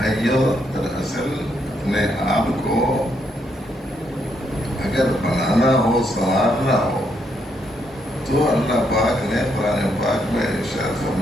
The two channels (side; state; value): both; normal; correlation 0.76